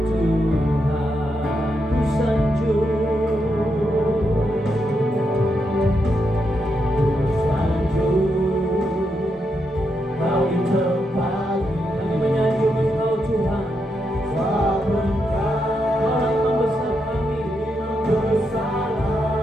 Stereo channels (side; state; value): both; normal; correlation 0.82